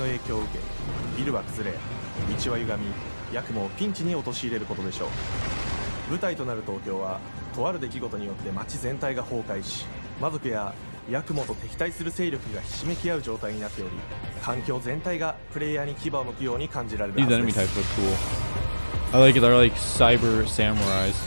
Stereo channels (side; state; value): both; inverted; correlation -1.00